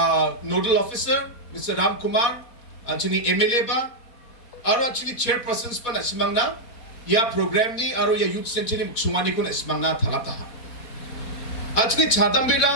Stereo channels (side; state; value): right; late; 4.4 ms